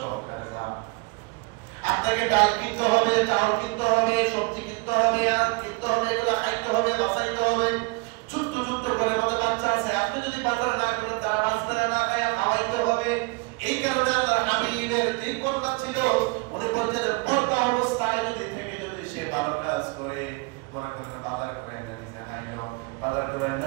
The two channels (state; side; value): quieter; left; 28.0 dB